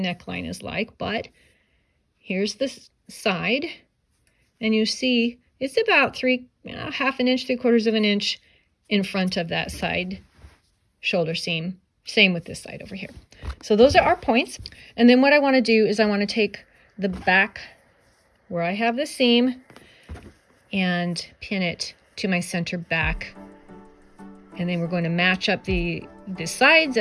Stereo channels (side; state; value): both; identical; correlation 1.00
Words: is like, but here's the side. And you see it's about half an inch, 3/4 of an inch in front of that side shoulder seam. Same with this side over here. So those are our points. And then what I want to do is I want to take the back where I have the seam and pin it to my center back. And then we're going to match up the sides